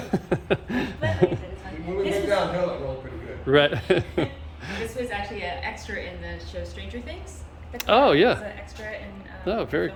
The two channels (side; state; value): both; identical; correlation 1.00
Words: said, it's fine. When we went downhill, it rolled pretty good. Right. This was actually an extra in the show Stranger Things. Oh, yeah. It was an extra in Oh, very